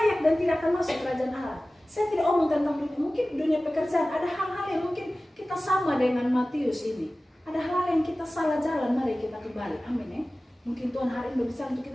dan tidak akan masuk kerajaan Allah. Saya tidak omong tentang dunia, mungkin dunia pekerjaan, ada hal-hal yang mungkin kita sama dengan Matius ini. Ada hal yang kita salah jalan, mari kita kembali. Amin ya. Mungkin Tuhan hari ini berbicara untuk kita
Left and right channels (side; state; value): both; normal; correlation 0.97